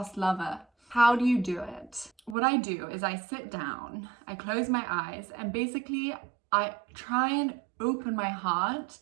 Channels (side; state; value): left; drops out; at 2.4 s